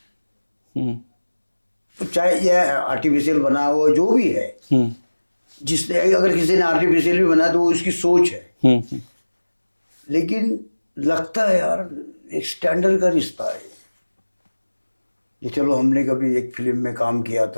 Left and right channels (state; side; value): inverted; both; correlation -1.00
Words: तो चाहे यह आर्टिफिशियल बना हुआ जो भी है, जिसने अगर किसी ने आर्टिफिशियल भी बनाया तो वो उसकी सोच है। लेकिन लगता है यार एक स्टैंडर्ड का रिश्ता है ये। चलो हमने कभी एक फिल्म में काम किया